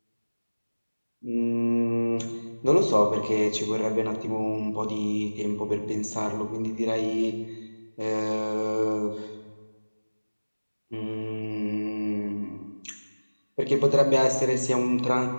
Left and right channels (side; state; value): both; inverted; correlation -1.00